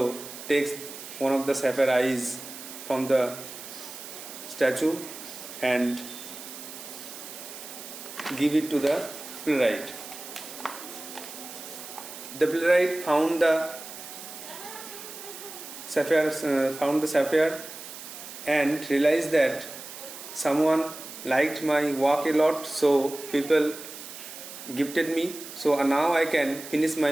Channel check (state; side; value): noise; right; hiss, 12 dB below the sound